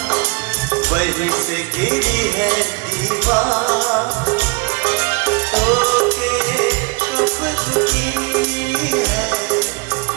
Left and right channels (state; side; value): quieter; left; 29.4 dB